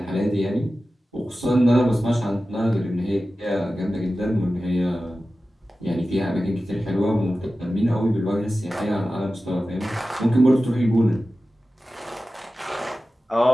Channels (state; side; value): normal; both; correlation 0.95